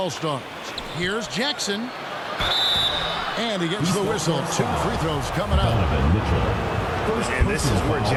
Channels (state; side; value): identical; both; correlation 1.00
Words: Here's Jackson. And he gets the whistle. 2 free throws coming up. And this is where